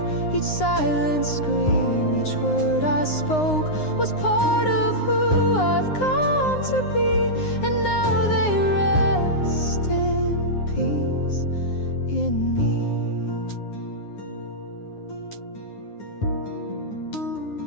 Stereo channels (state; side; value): late; right; 9.7 ms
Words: Each silent scream, each word I spoke was part of who I've come to be, and now they rest in peace in me.